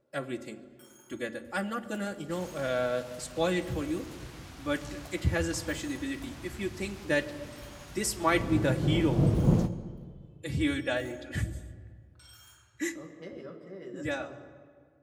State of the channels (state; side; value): identical; both; correlation 1.00